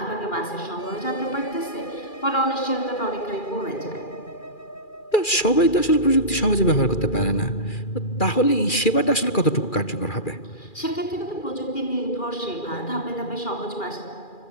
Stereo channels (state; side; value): late; right; 2.4 ms